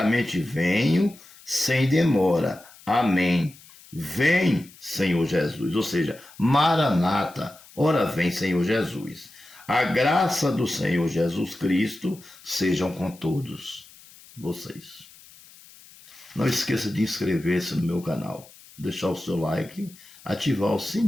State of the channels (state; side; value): noise; left; hiss, 23 dB below the sound